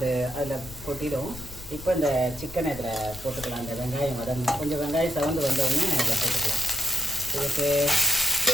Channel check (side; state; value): left; noise; rumble, 15 dB below the sound